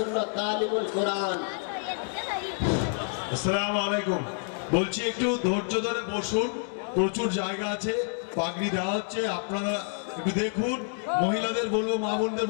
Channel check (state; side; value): silent; right; 59 dB below the other